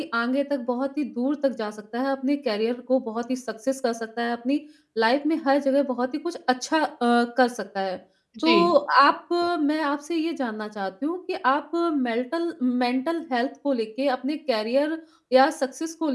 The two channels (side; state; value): both; identical; correlation 1.00